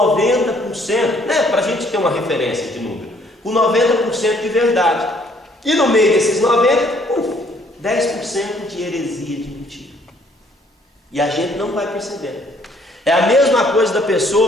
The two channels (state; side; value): normal; both; correlation 0.63